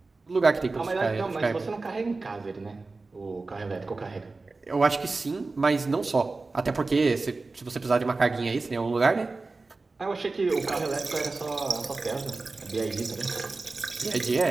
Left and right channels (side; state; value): left; quieter; 3.6 dB